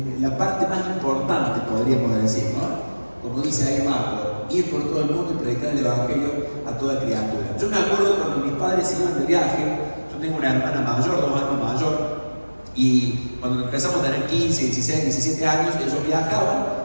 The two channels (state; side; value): inverted; both; correlation -1.00